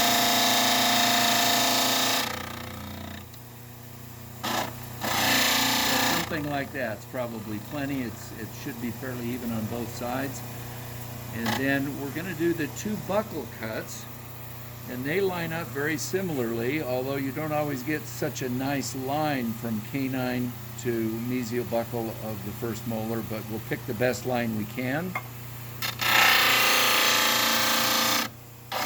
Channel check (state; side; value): identical; both; correlation 1.00